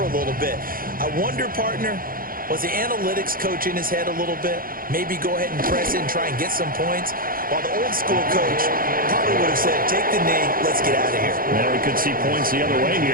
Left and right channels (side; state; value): left; late; 0.41 ms